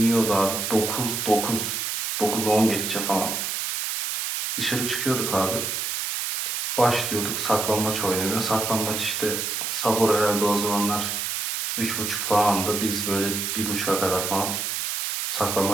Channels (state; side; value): noise; right; hiss, 2 dB below the sound